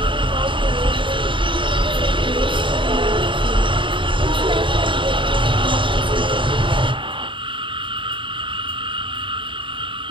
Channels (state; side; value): late; left; 0.24 ms